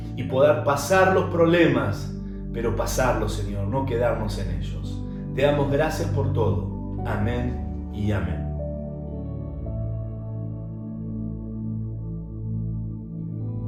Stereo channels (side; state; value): both; identical; correlation 1.00